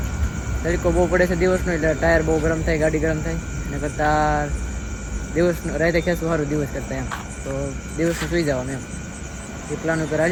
તડકો બહુ પડે છે દિવસનો, એટલે ટાયર બહુ ગરમ થાય, ગાડી ગરમ થાય. એના કરતાં દિવસનું રાતે ખેંચવું સારું દિવસ કરતાં એમ. તો દિવસનું સુઈ જવાનું એમ એ પ્લાન ઉપર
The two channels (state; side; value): identical; both; correlation 1.00